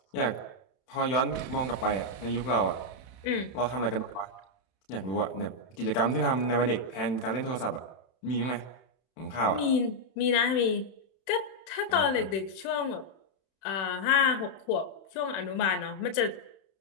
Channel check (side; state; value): right; late; 31 ms